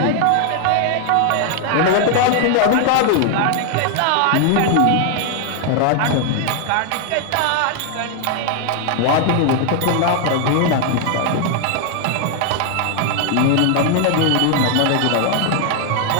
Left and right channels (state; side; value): different; both; correlation 0.01